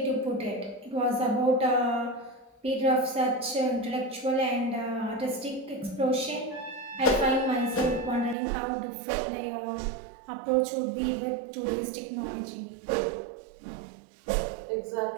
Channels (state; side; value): drops out; left; at 8.3 s